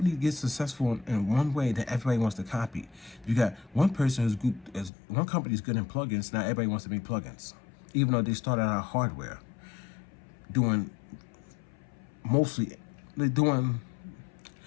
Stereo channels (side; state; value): right; drops out; at 4.9 s